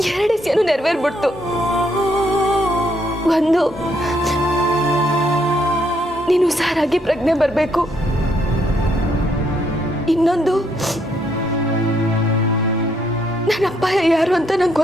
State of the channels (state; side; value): normal; both; correlation 0.73